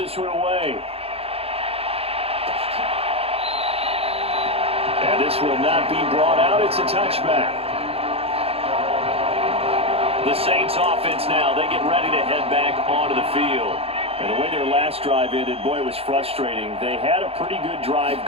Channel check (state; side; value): late; left; 0.28 ms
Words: one away. And this will not be brought out. It's a touchback. The Saints offense now, they get ready to head back onto the field. And the way their last drive ended, boy, it was frustrating. They had a pretty good drive